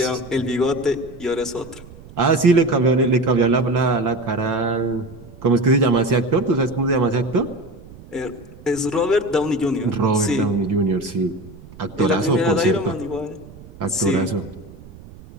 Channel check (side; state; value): right; noise; rumble, 19 dB below the sound